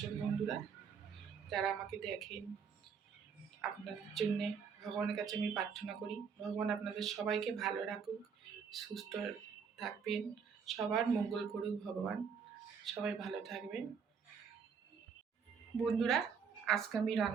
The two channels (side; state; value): left; quieter; 6.4 dB